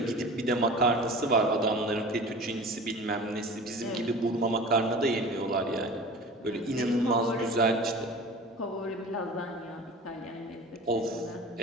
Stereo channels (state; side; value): normal; both; correlation 0.38